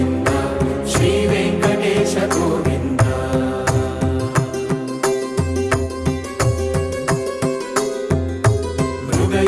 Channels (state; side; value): identical; both; correlation 1.00